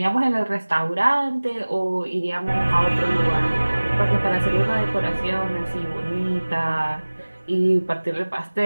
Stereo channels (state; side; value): inverted; both; correlation -1.00